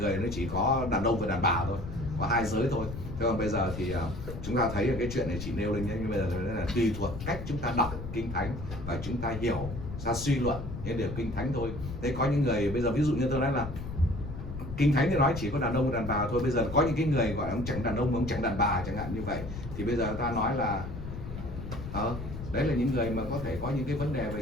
nó chỉ có đàn ông và đàn bà thôi, có hai giới thôi. Thế còn bây giờ thì chúng ta thấy cái chuyện này chỉ nêu lên nhé, nhưng bây giờ là tùy thuộc cách chúng ta đọc Kinh Thánh và chúng ta hiểu, ra suy luận những điều Kinh Thánh thôi. Thế có những người bây giờ ví dụ như tôi nói là Kinh Thánh thì nói chỉ có đàn ông và đàn bà thôi. Bây giờ có những cái người gọi là ông chẳng đàn ông, ông chẳng đàn bà chẳng hạn như vậy, thì bây giờ ta nói là đấy là những người mà có thể có những cái vấn đề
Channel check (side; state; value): left; noise; rumble, 8 dB below the sound